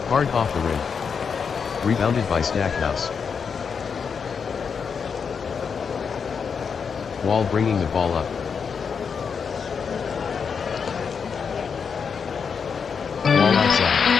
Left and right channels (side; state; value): right; quieter; 6.2 dB